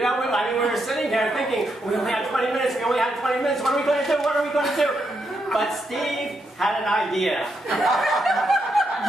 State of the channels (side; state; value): both; normal; correlation 0.81